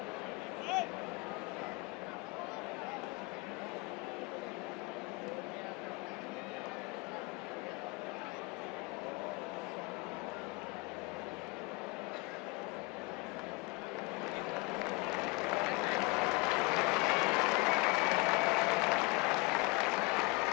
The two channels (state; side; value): quieter; right; 26.5 dB